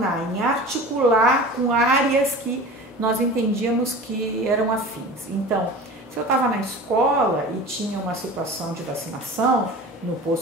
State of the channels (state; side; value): normal; both; correlation 0.37